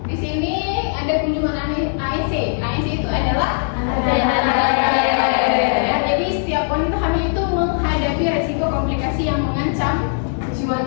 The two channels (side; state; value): right; silent; digital silence